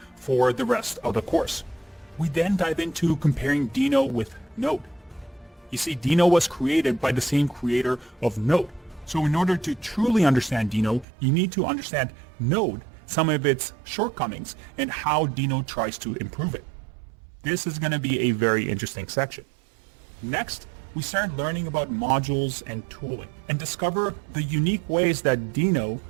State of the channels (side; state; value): left; drops out; at 11.1 s